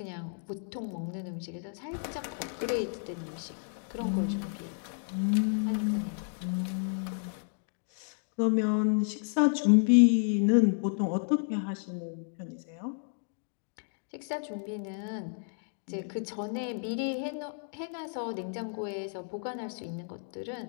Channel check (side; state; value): right; silent; 57 dB below the other